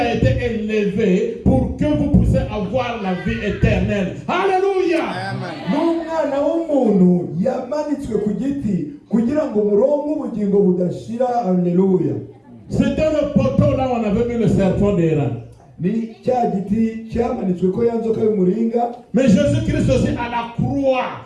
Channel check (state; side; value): identical; both; correlation 1.00